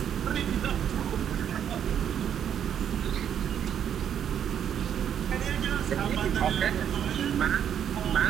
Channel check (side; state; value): left; quieter; 9.1 dB